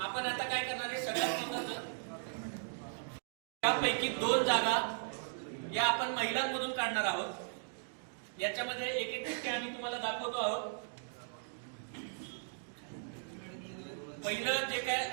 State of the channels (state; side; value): silent; left; digital silence